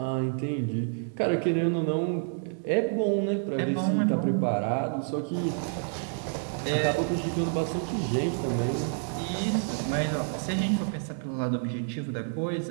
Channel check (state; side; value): silent; left; 58 dB below the other